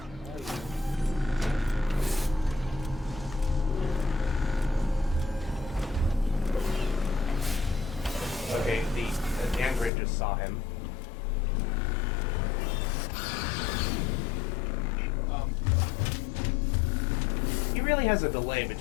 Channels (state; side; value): drops out; right; at 9.9 s